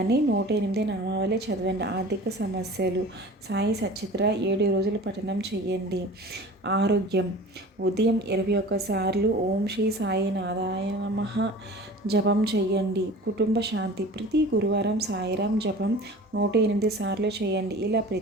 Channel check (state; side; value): normal; both; correlation 0.40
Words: 108 నామావళి చదవండి. ఆర్థిక సమస్యలు, సాయి సచిత్ర 7 రోజులు పఠనం చేయండి. ఆరోగ్యం, ఉదయం 21 సార్లు ఓం శ్రీ సాయినాథాయ నమః జపం చేయండి. కుటుంబ శాంతి, ప్రతి గురువారం సాయిరాం జపం 108 సార్లు చేయండి. ఇలా